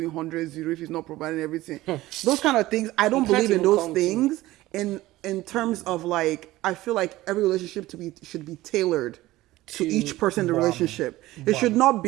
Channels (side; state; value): left; quieter; 17.2 dB